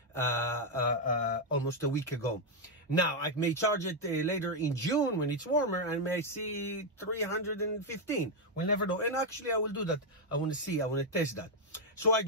almost a week ago. Now, I may charge it later in June when it's warmer and may see 315. We'll never know. And actually, I will do that. I want to test that. So I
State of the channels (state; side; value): normal; both; correlation 0.01